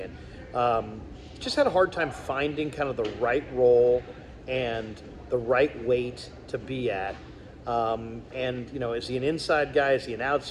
just had a hard time finding kind of the right role and the right weight to be at. Is he an inside guy? Is he an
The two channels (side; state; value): both; identical; correlation 1.00